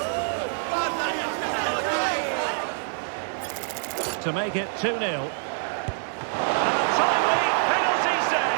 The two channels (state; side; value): silent; left; digital silence